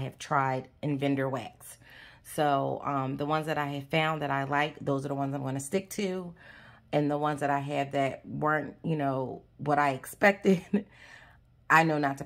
tried in vendor wax. So the ones that I have found that I like, those are the ones I'm going to stick to. And the ones that I have that weren't, you know, what I expected, I know not to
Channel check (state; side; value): identical; both; correlation 1.00